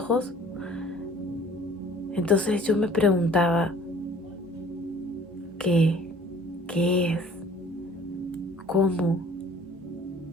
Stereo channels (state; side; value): normal; both; correlation 0.51